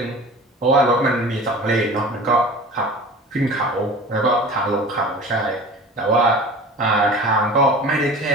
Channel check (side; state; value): both; normal; correlation 0.39